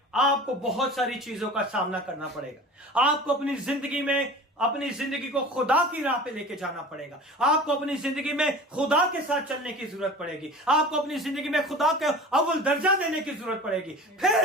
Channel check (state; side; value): normal; both; correlation 0.39